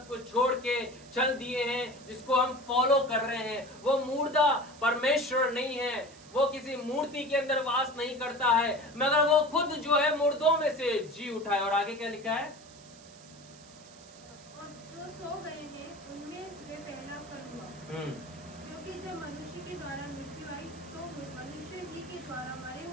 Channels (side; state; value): right; noise; hiss, 21 dB below the sound